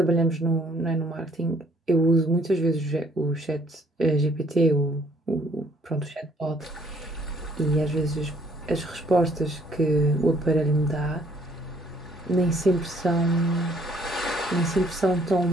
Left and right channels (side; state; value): both; normal; correlation 0.63